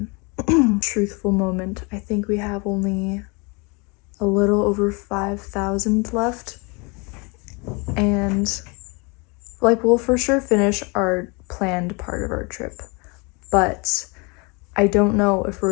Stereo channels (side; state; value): right; quieter; 30.0 dB